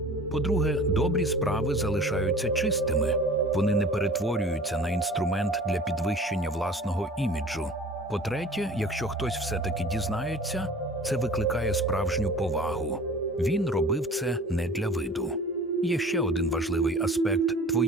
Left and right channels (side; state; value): both; normal; correlation 0.43